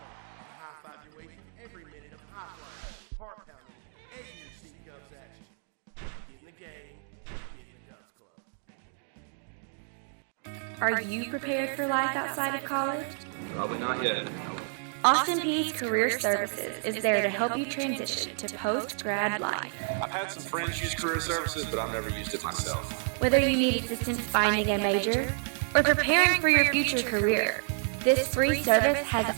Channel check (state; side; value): silent; left; 58 dB below the other